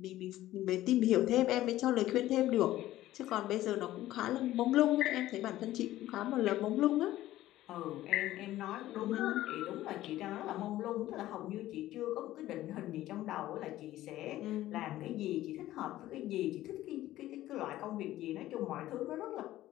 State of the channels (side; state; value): right; quieter; 14.9 dB